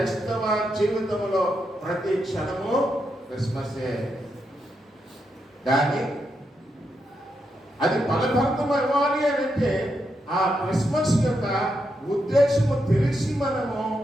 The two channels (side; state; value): both; normal; correlation 0.83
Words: జీవితంలో ప్రతి క్షణము క్రిస్మసే. కానీ అది ఫలభరితం ఇవ్వాలి అని అంటే ఆ క్రిస్మస్ యొక్క ఉద్దేశము తెలిసి మనము